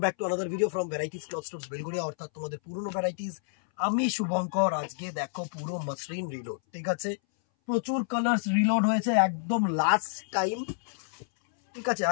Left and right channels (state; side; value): silent; right; 58 dB below the other